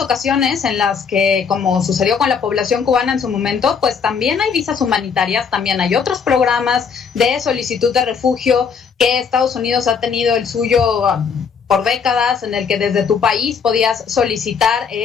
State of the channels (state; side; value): quieter; right; 6.2 dB